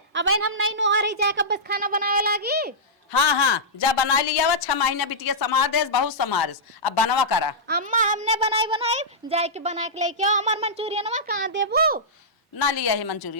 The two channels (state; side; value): normal; both; correlation -0.13